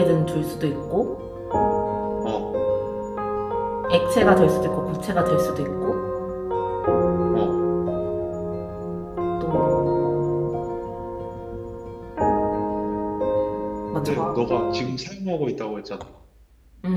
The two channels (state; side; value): identical; both; correlation 1.00